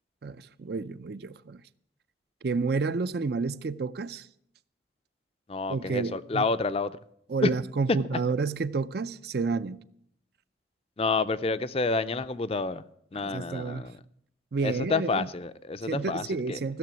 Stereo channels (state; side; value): normal; both; correlation 0.37